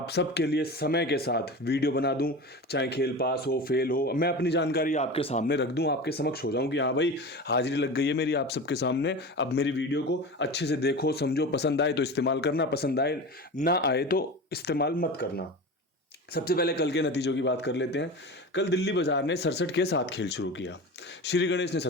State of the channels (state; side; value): normal; both; correlation 0.30